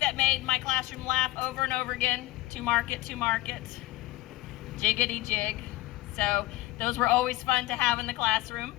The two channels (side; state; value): right; quieter; 17.2 dB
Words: that made my classroom laugh over and over again, To Market, Jiggity Jig. So those were always fun to have in the classroom.